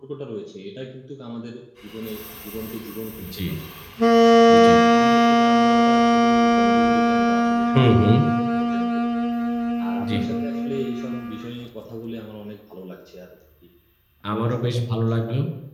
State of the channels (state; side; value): identical; both; correlation 1.00